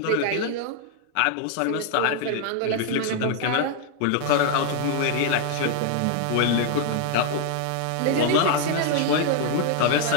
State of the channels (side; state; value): both; different; correlation 0.00